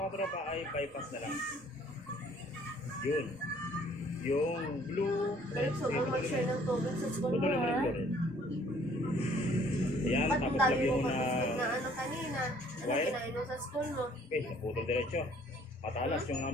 katropa ay bypass na lang. Yun. Yung blue, red, so, kung mag-share ng tubig sa school mo, putulin mo rin ha? blue red. Ayan, Ba't tapos dami lagyan mo mo pa na na ano kanina? Ano wire? kinain mo sa school mo? Okay, naputol diretso. Matalas yung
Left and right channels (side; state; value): both; normal; correlation 0.58